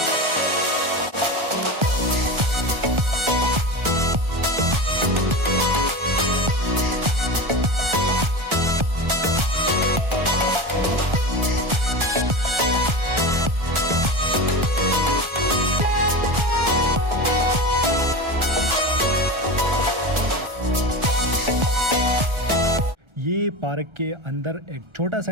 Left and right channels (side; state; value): left; late; 1.4 ms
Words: ये पार्क के अंदर एक छोटा